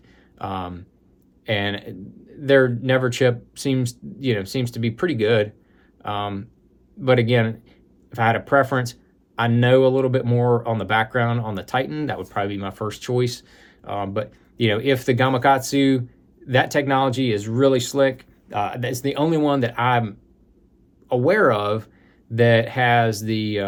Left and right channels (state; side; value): identical; both; correlation 1.00